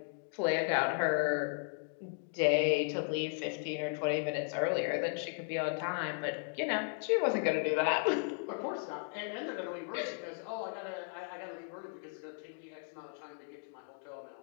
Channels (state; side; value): silent; right; 54 dB below the other